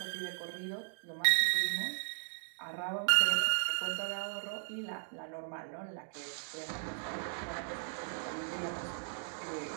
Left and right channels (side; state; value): left; silent; digital silence